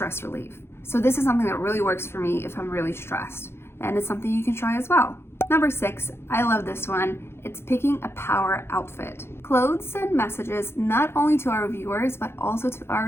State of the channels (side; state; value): right; late; 0.12 ms